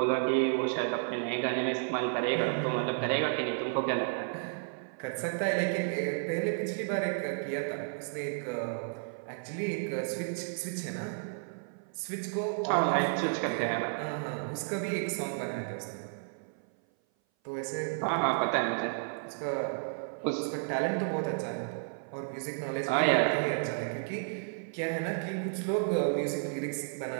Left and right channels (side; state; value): left; silent; 56 dB below the other